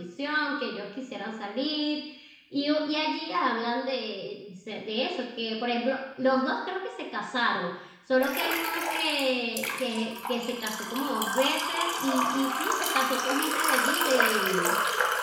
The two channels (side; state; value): both; identical; correlation 1.00